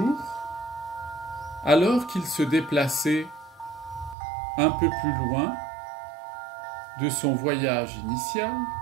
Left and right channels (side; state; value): left; drops out; at 4.2 s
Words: alors qu'il se déplaçait un peu plus loin de son voyage initial,